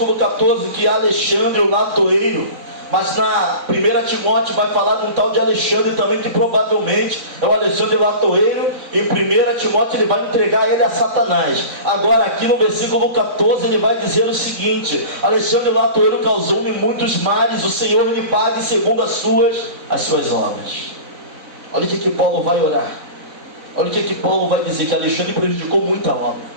14 que Alexandre, o latoeiro, mas na 1 Timóteo vai falar de um tal de Alexandre também, que provavelmente é o Alexandre latoeiro. Em 1 Timóteo ele vai entregar ele a Satanás. Agora aqui no versículo 14 ele vai dizer o seguinte: Alexandre latoeiro causou-me muitos males, o Senhor lhe pague segundo as suas obras. Olha o que Paulo vai orar. Olha o que Paulo vai dizer: que Alexandre prejudicou muita obra,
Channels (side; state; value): left; late; 4.0 ms